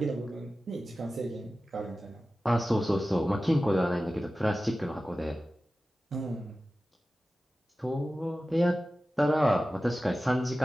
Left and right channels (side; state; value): both; normal; correlation 0.95